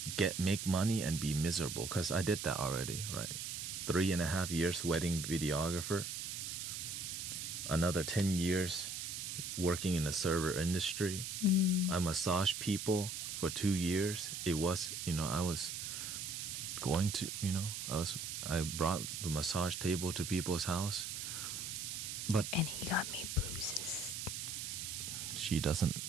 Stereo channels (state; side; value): noise; right; hiss, 5 dB below the sound